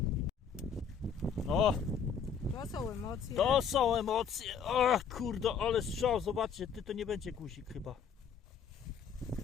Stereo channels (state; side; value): quieter; right; 6.8 dB